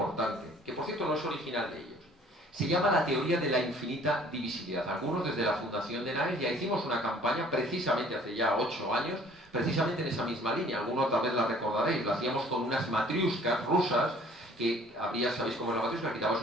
que por cierto no es original de ellos. Se llama la teoría de la infinita divisibilidad. Algunos desde la Fundación de Naes ya hicimos una campaña precisamente hace ya 8 años, precisamente en esa misma línea. Algunos tal vez la recordaréis, lo hacíamos con unas matriuscas rusas, que había, ¿sabéis cómo es la matriusca? Quitabas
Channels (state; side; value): normal; both; correlation 0.54